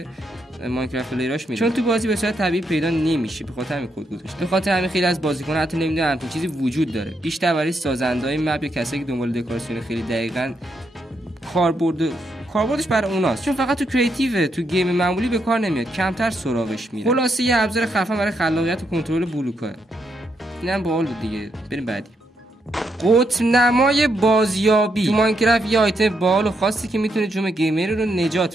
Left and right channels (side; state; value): both; normal; correlation 0.79